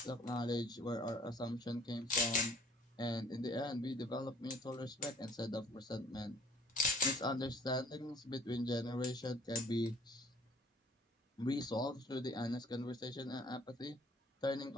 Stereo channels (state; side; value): normal; both; correlation 0.56